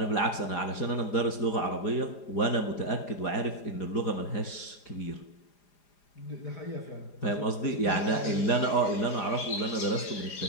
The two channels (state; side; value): late; right; 4.9 ms